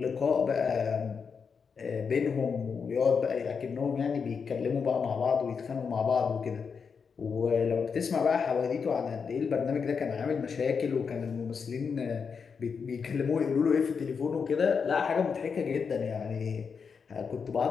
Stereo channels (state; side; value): quieter; right; 5.9 dB